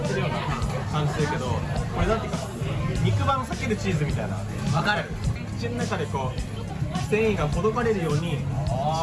てるような感じするけど、これなんていうか肉版避けるチーズみたいな。わかる。口の中でこう繊維がほどかれるように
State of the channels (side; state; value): both; identical; correlation 1.00